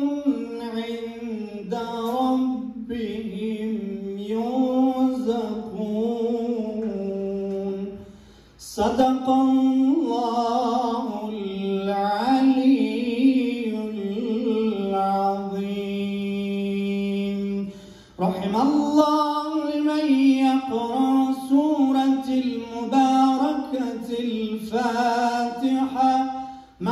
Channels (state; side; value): identical; both; correlation 1.00